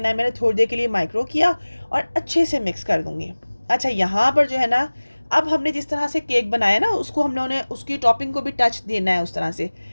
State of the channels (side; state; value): both; inverted; correlation -1.00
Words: है। मैंने थोड़ी देर के लिए माइक्रो किया और अच्छे से मिक्स कर दूँगी। अच्छा, यहाँ पर जो है ना, अब हमने जिस तरह से केक बनाया ना, उसको हम लोगों ने उसकी टॉपिंग को भी टच देना है उस तरह से।